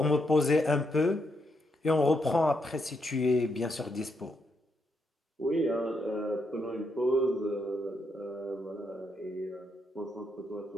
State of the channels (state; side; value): normal; both; correlation 0.79